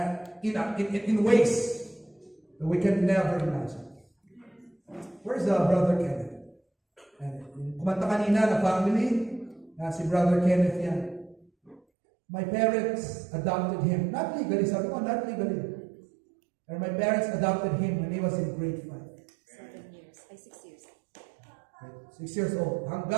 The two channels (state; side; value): drops out; left; at 11.8 s